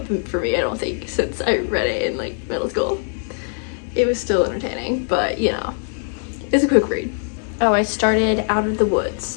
for me, I don't think, since I read it in like middle school. It was still entertaining, but you know, it's a quick read. Oh, I started Out of the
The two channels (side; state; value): right; silent; 62 dB below the other